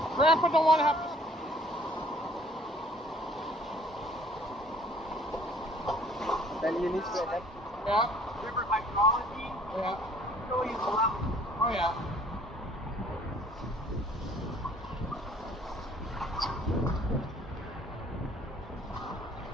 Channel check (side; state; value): both; normal; correlation 0.56